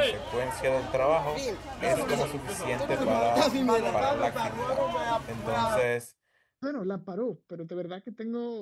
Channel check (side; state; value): both; identical; correlation 1.00